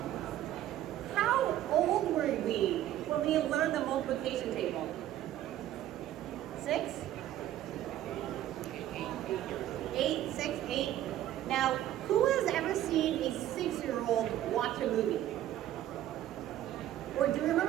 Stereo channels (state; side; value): quieter; left; 12.7 dB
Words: how old were we when we learned the multiplication table? 6? 8, 6, 8. Now, who has ever seen a 6-year-old watch a movie? Or do you